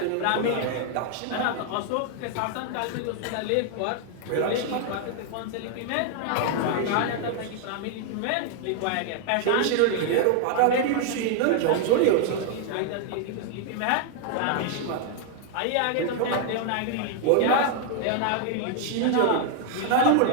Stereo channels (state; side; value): different; both; correlation 0.00